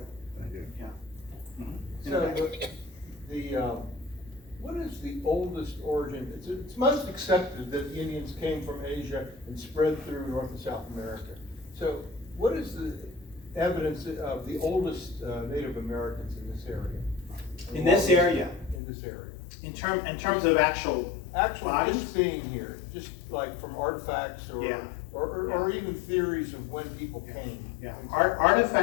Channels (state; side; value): drops out; right; at 18.8 s